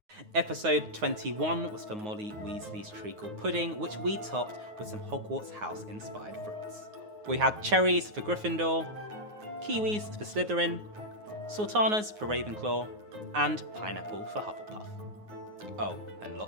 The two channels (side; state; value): left; late; 9.4 ms